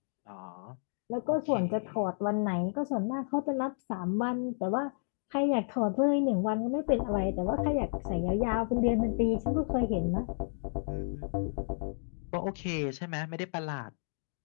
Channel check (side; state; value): right; silent; digital silence